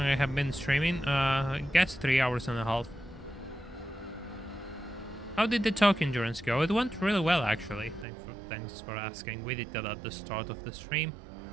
I have been streaming? I guess 3 hours and a half. How did the talk endurance go? It went really well, actually. Thanks for asking. We did that at the start of the stream.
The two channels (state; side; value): drops out; left; at 8.1 s